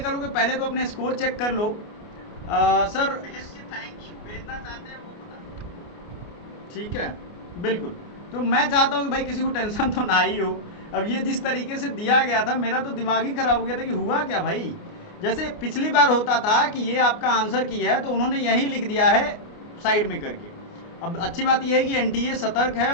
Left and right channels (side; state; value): right; late; 29 ms